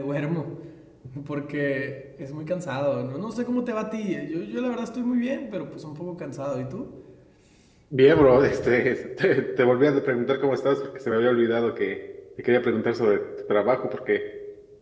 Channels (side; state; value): both; identical; correlation 1.00